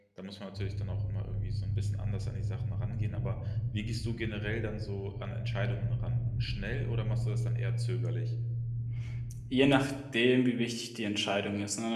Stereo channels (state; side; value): identical; both; correlation 1.00